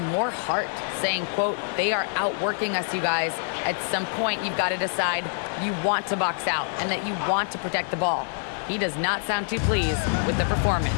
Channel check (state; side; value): silent; right; 61 dB below the other